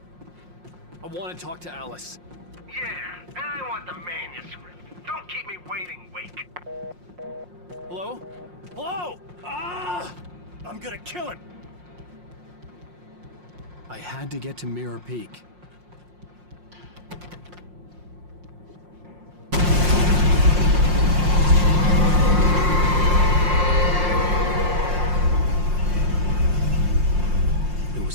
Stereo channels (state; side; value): late; left; 5.6 ms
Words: I want to talk to Alice. Yeah, and I want the manuscript. Don't keep me waiting, Wake. Hello? Hello? Ah! I'm gonna kill him! I had to get to Mirror Peak. It